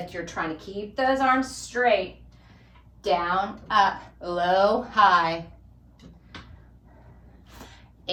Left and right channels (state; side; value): identical; both; correlation 1.00